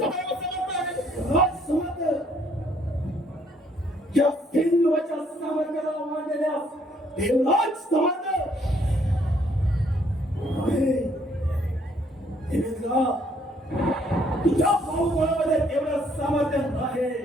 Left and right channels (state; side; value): normal; both; correlation 0.66